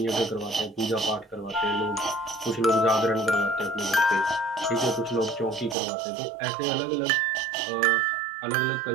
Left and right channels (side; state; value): left; drops out; at 5.8 s